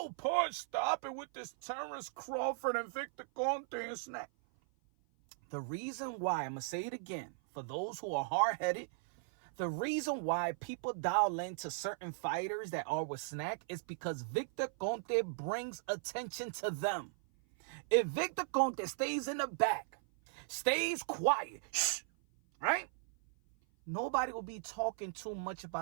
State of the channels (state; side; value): silent; left; 53 dB below the other